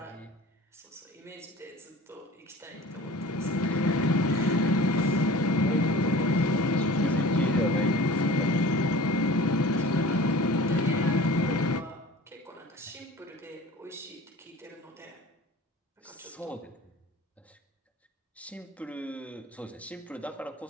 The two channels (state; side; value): normal; both; correlation 0.41